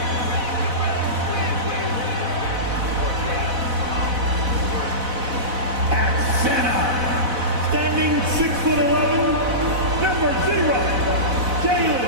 At center, standing 6'11", number 0, Jalen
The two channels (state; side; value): late; left; 4.0 ms